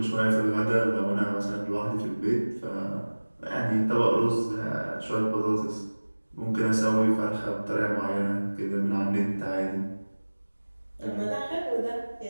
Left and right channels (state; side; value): inverted; both; correlation -1.00